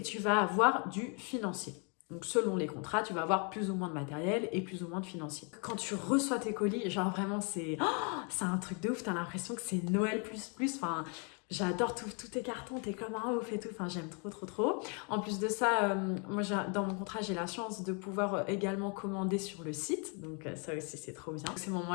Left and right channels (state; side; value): quieter; right; 36.4 dB